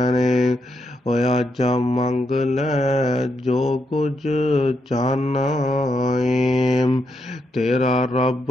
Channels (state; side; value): normal; both; correlation 0.81